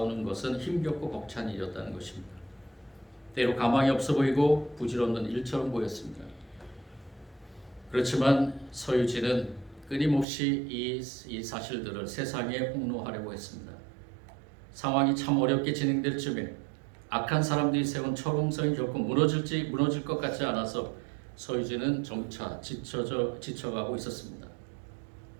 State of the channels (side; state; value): left; drops out; at 10.2 s